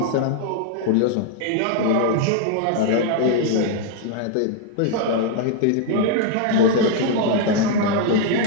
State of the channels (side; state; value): both; different; correlation 0.00